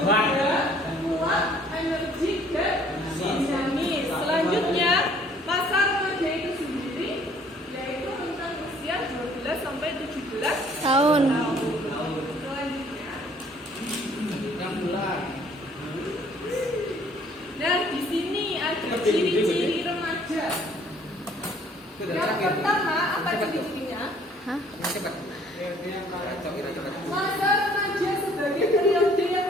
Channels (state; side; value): normal; both; correlation 0.58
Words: kuat, energik dan dinamis. Selanjutnya masa remaja itu sendiri yaitu rentang usia 12 sampai 17 Tahun. Selanjutnya. Nah, di sini ada ciri-ciri remaja. Yang pertama, apa ciri-cirinya? Hah? Cepat. Masa remaja sebagai periode